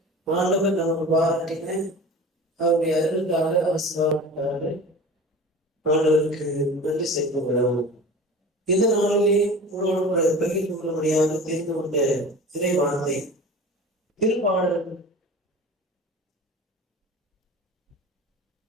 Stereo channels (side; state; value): both; normal; correlation 0.37